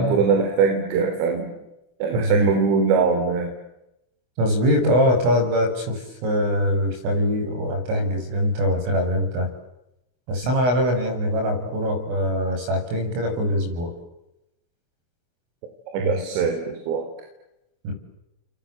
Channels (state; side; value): late; left; 24 ms